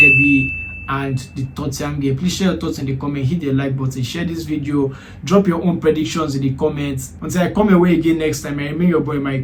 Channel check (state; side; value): identical; both; correlation 1.00